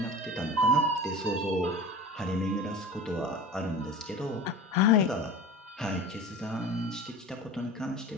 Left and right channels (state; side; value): normal; both; correlation 0.35